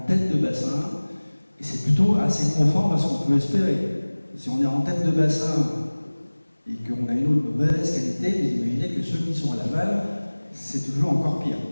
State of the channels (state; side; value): inverted; both; correlation -1.00